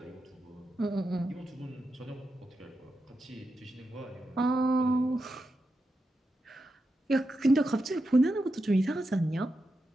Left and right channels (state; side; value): normal; both; correlation 0.88